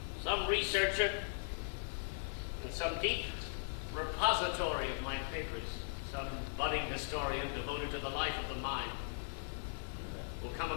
some researcher in some deep repository of my papers, some budding historian devoted to the life of the mind, will come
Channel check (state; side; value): silent; right; 52 dB below the other